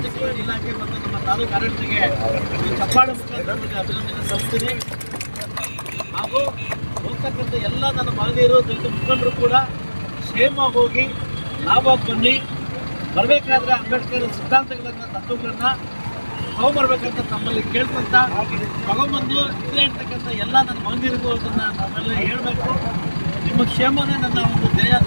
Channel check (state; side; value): inverted; both; correlation -1.00